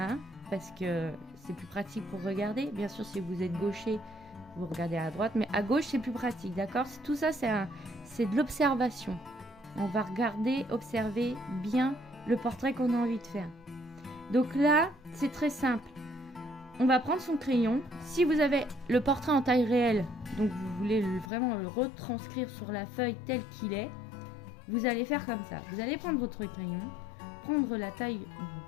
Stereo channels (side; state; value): right; drops out; at 21.3 s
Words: parce que c'est plus pratique pour regarder. Bien sûr, si vous êtes gaucher, vous regardez à droite, mais à gauche, c'est plus pratique, d'accord? Tout ça, c'est de l'observation. On va regarder, observer bien le portrait qu'on a envie de faire. Donc là, c'est très simple. On va prendre son crayon. Si vous avez le portrait en taille réelle, donc vous voulez vraiment le retranscrire sur la feuille tel qu'il est, vous allez faire comme ça. Vous allez prendre votre crayon, prendre la taille